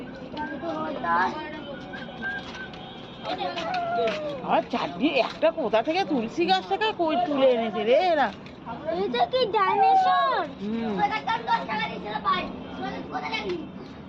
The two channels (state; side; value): identical; both; correlation 1.00